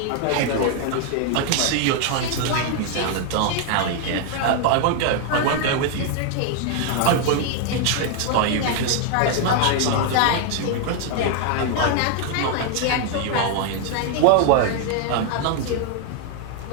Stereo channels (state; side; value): different; both; correlation 0.00